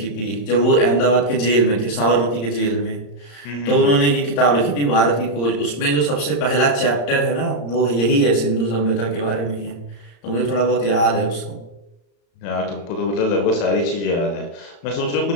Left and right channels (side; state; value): right; late; 34 ms